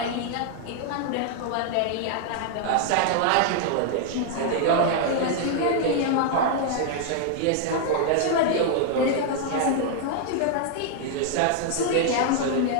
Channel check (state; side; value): different; both; correlation 0.00